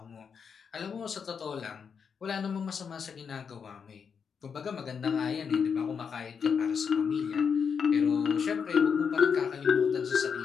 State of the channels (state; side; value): quieter; right; 6.5 dB